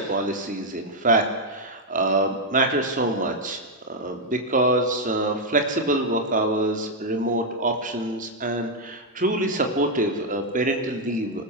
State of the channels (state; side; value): normal; both; correlation 0.00